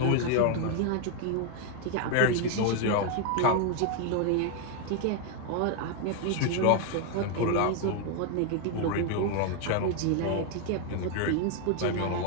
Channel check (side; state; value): both; different; correlation 0.01